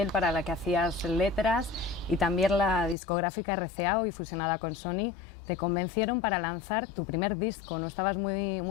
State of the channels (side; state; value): right; drops out; at 3.0 s